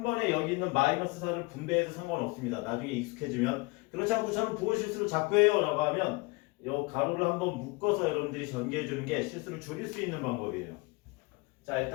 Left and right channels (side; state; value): right; quieter; 25.8 dB